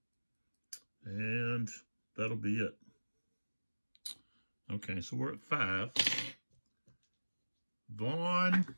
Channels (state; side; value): inverted; both; correlation -1.00